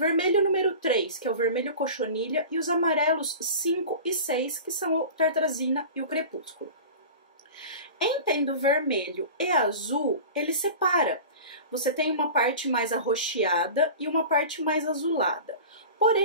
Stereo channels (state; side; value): inverted; both; correlation -0.35